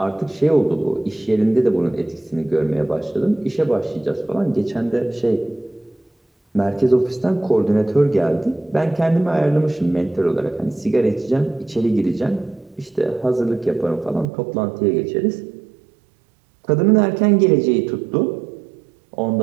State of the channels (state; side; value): drops out; left; at 14.2 s